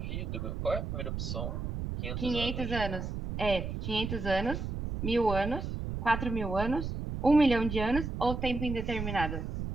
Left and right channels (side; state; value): right; noise; rumble, 4 dB below the sound